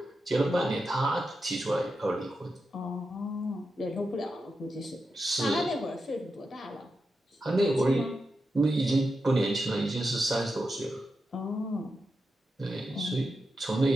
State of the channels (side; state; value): both; normal; correlation 0.88